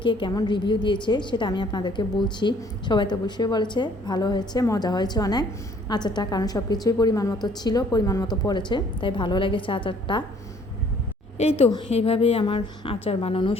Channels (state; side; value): normal; both; correlation 0.59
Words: কে কেমন রিভিউ দিয়েছে সেটা আমি আপনাদেরকে বলছি। সবাই তো অবশ্যই বলেছে ভালো হয়েছে, মজা হয়েছে অনেক আচারটা, কারণ সব কিছুই পরিমাণ মতো ছিল, পরিমাণ মতো পড়েছে, তাই ভালো লেগেছে আচারটা। এই তো এইভাবেই আমার আচার বানানো